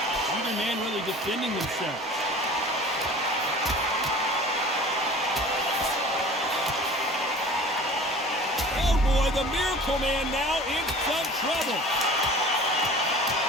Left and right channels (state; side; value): normal; both; correlation 0.43